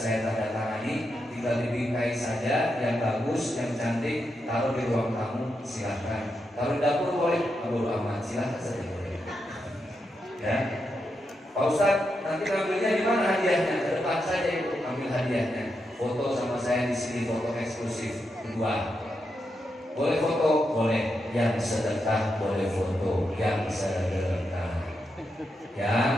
tanda tangani. Tinggal dibingkai saja yang bagus, yang cantik, taruh di ruang tamu, silahkan. Taruh di dapur boleh, bodo amat, silahkan saja boleh. Ya, Pak Ustaz, nanti ngambilnya di mana hadiahnya? Ke depan saja Ibu, ambil hadiahnya. Foto sama saya di sini, foto eksklusif kedua. Boleh foto? Boleh. Yang sedekah boleh foto. Yang sedekah. Yang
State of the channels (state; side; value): normal; both; correlation 0.85